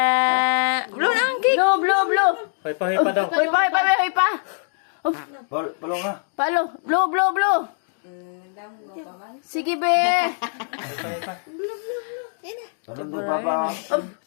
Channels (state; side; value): silent; right; digital silence